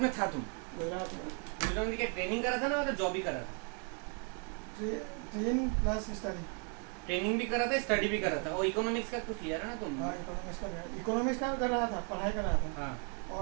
में था तुम? गुजरात में गुजरात में क्या ट्रेनिंग करा था ना, मतलब जॉब ही करा था? Train plus study. ट्रेनिंग भी करा था, स्टडी भी करा था, और इकोनॉमिक्स का कुछ लिया था ना तुम? हाँ इकोनॉमिक्स का कर रहा था, पढ़ाई कर रहा था। हाँ।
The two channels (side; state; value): left; quieter; 37.2 dB